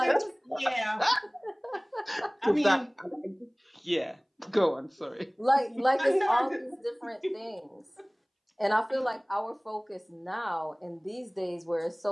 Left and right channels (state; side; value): identical; both; correlation 1.00